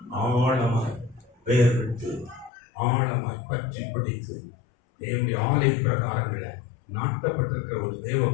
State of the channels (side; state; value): right; drops out; at 2.5 s